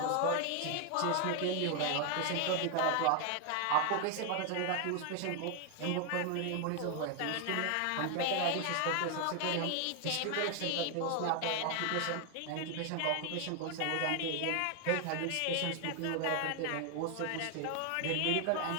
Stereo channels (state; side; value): different; both; correlation 0.00